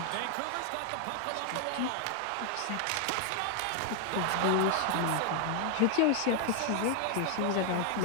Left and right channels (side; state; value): both; different; correlation 0.00